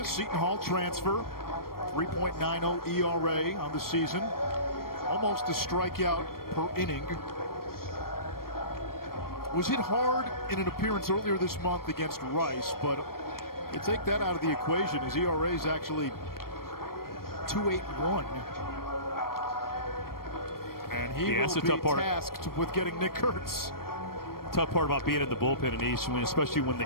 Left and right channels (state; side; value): late; right; 0.93 ms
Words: Seton Hall transfer, 3.90 ERA on the season, almost a strikeout per inning. Was hit hard in an appearance earlier this month against Rice, but you take that out of the equation. His ERA is actually 2.81. And he will be tasked with getting Nick Kurtz. Tough part about being in the bullpen in East, especially when